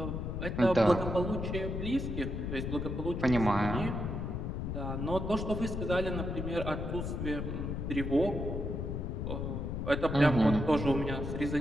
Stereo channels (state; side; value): noise; left; rumble, 3 dB below the sound